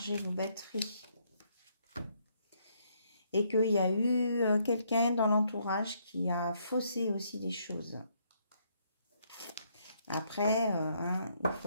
vos batteries. Et qu'il y a eu quelqu'un dans l'entourage qui a faussé aussi des choses. Après, hein, il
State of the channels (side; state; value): both; inverted; correlation -0.72